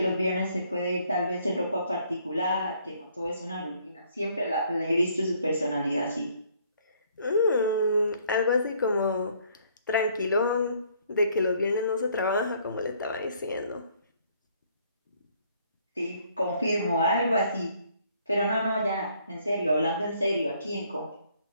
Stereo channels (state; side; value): inverted; both; correlation -0.64